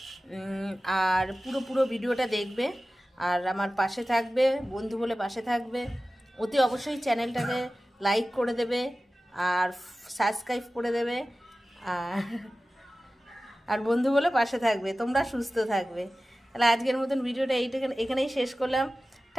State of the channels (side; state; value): both; normal; correlation 0.96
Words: আর পুরো ভিডিওটা দেখবে, আর আমার পাশে থাকবে, বন্ধু বলে পাশে থাকবে। অতি অবশ্যই চ্যানেলটাকে লাইক করে দেবে আর সাবস্ক্রাইব করে দেবে, আর বন্ধু বলে পাশে থাকবে। তোমরা সুস্থ থাকবে। তাহলে আজকের মতন ভিডিওটা এখানেই শেষ করলাম।